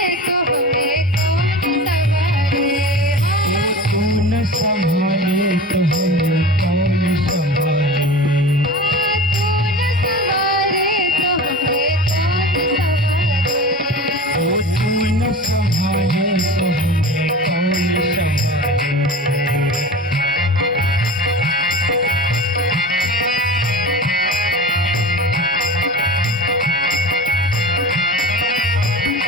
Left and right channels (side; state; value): both; normal; correlation 0.34